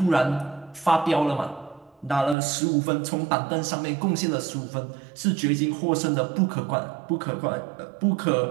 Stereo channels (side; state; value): left; drops out; at 2.4 s